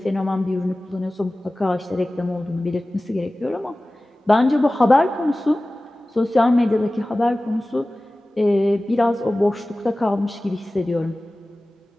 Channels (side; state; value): both; normal; correlation 0.97